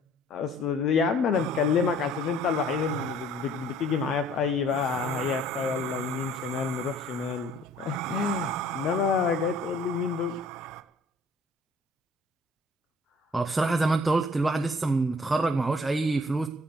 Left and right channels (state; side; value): normal; both; correlation 0.56